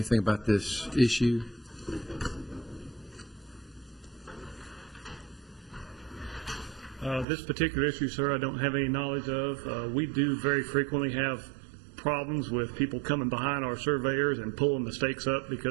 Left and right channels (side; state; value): left; drops out; at 7.2 s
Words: about this issue? This particular issue, sir, I don't have any knowledge of. We do very frequently have problems with people coming behind our surveyors and pulling the stakes up